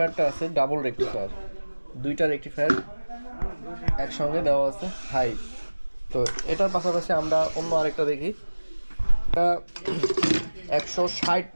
আছে ডাবল রেকটিফায়ার, 2টা রেকটিফায়ার একসঙ্গে দেওয়া আছে হাই। তো এটার পাশাপাশি আমরা অন্য আরেকটা দেখি, এটা 160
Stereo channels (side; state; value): both; inverted; correlation -1.00